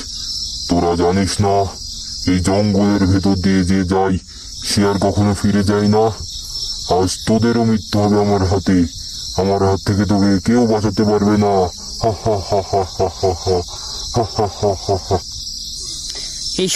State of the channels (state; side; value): identical; both; correlation 1.00